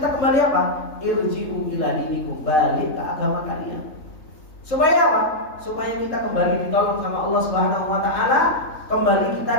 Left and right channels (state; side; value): late; right; 3.7 ms